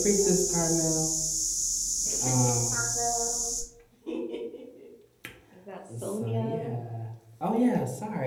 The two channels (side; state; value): both; identical; correlation 1.00